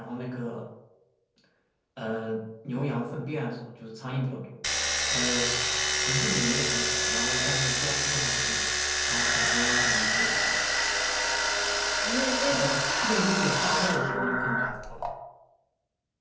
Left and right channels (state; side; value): identical; both; correlation 1.00